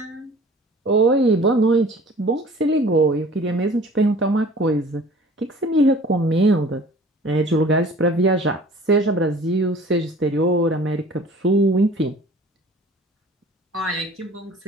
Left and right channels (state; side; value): normal; both; correlation 0.47